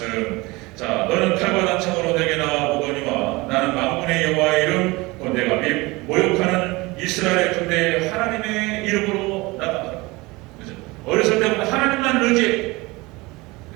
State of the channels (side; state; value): left; quieter; 22.9 dB